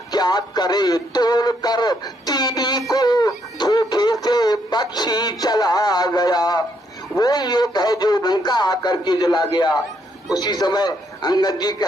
क्या करे तोड़ कर तीनी को धोखे से पक्षी चला गया। वो एक है जो लंका आकर के जला गया। उसी समय अंगद जी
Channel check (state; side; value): normal; both; correlation 0.74